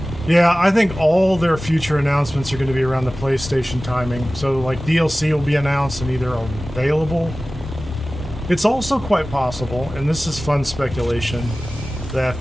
Yeah, I think all their future announcements are going to be around the PlayStation timing. So, like, DLC will be announced and either available. It's also quite possible, and this is fun speculation, that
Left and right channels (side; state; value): both; normal; correlation 0.97